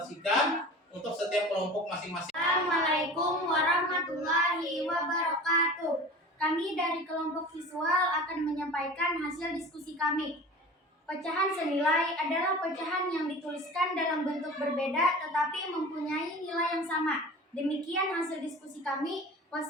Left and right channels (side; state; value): both; normal; correlation 0.37